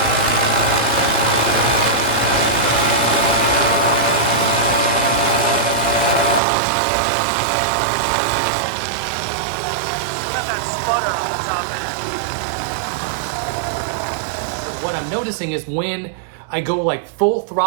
What I'm noticing is when I go like full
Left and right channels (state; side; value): drops out; left; at 6.4 s